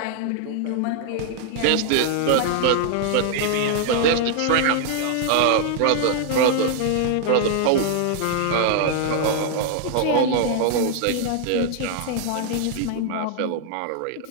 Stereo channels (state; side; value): different; both; correlation 0.00